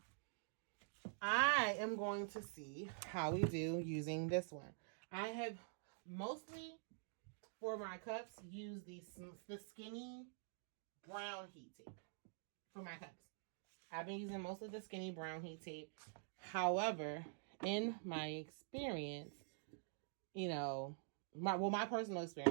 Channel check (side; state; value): left; silent; digital silence